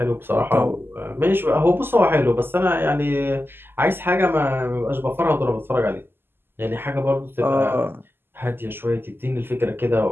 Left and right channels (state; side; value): late; left; 0.10 ms